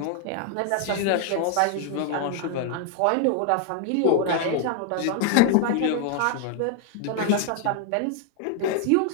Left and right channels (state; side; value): different; both; correlation 0.00